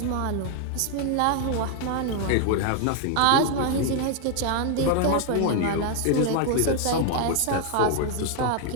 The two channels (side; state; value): both; different; correlation 0.00